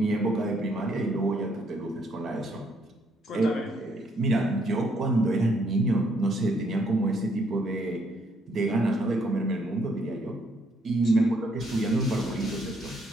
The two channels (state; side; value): normal; both; correlation 0.70